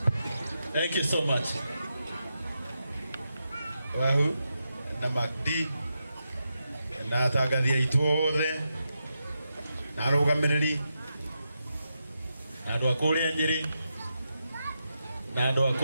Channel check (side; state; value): both; inverted; correlation -0.86